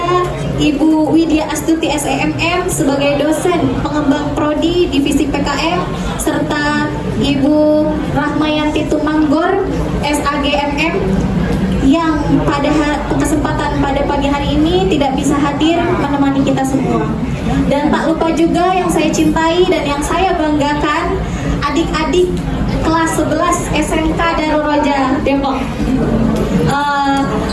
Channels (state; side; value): identical; both; correlation 1.00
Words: Ibu Widya Astuti SEMM sebagai dosen pengembang prodi divisi PKM, serta Ibu Rahmayanti Tumanggor SAGMM yang pada kesempatan pada pagi hari ini tidak bisa hadir menemani kita semua. Dan tak lupa juga yang saya cintai dan yang saya banggakan, adik-adik kelas 11 SMK Darul Roja Depok.